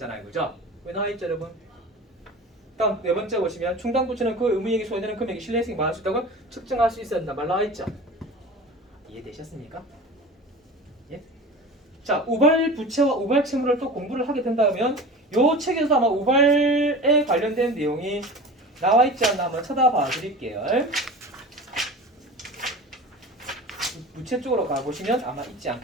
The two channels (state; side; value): normal; both; correlation 0.35